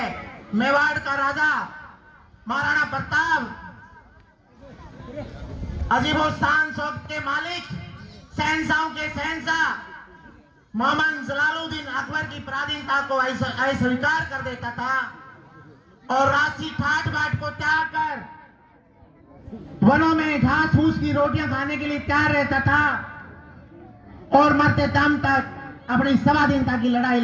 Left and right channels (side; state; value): both; identical; correlation 1.00